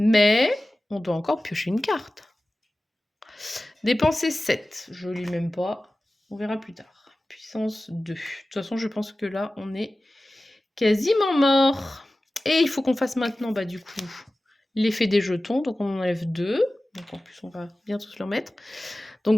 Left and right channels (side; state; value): both; normal; correlation 0.96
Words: on doit encore piocher une carte. Dépenser 7. Je ne lis même pas. On verra plus tard. Puissance 2. De toute façon, je pense que là, on est quasiment mort. Et il faut qu'on fasse maintenant, du coup, l'effet des jetons. Donc, on en enlève 2. Donc, en plus, on va bien tous leur mettre. Donc,